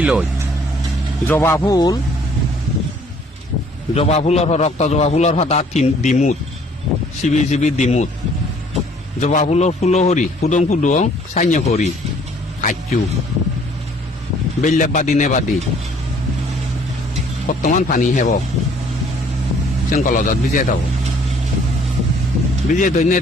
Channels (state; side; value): normal; both; correlation 0.59